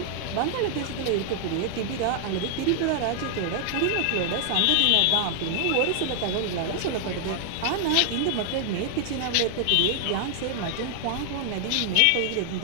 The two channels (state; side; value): different; both; correlation 0.00